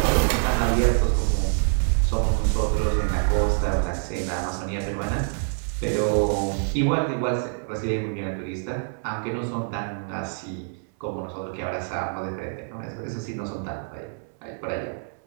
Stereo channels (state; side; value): silent; left; 61 dB below the other